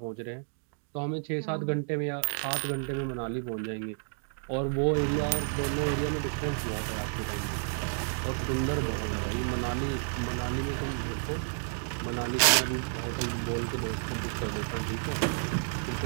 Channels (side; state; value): left; silent; 57 dB below the other